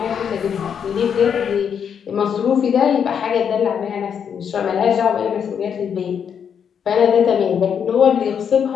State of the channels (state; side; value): quieter; right; 7.6 dB